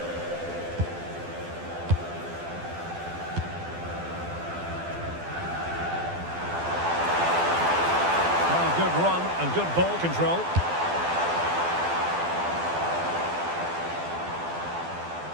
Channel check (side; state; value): left; late; 12 ms